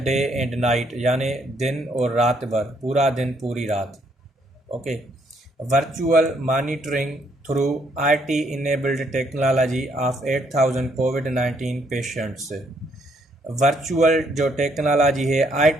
day and night, यानी दिन और रात भर, पूरा दिन पूरी रात। Okay, virtual monitoring through IT enabled technology of 8000 covid patients. Virtual जो टेक्नोलॉजी है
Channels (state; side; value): normal; both; correlation 0.70